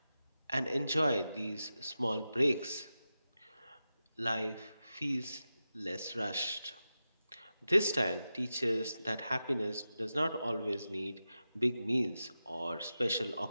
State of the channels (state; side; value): inverted; both; correlation -0.92